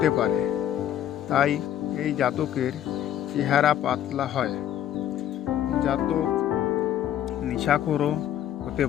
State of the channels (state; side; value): quieter; right; 11.2 dB